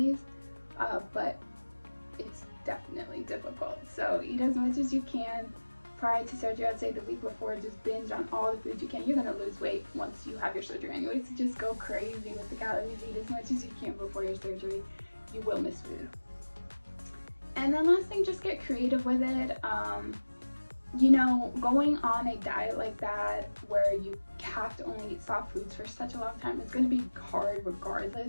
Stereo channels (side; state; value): both; inverted; correlation -1.00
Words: but it's definitely difficult. So eat as much as you can prior to surgery. I'd say the week before, just binge on all the food you can. You're going to lose weight once you have your surgery anyway, so just go crazy with the calories. Eat as much as you can before your surgery. You will miss food. And then last thing, just get creative with it. You know, going on a diet like that where you have to only eat soft foods for such a long time, it's going to be hard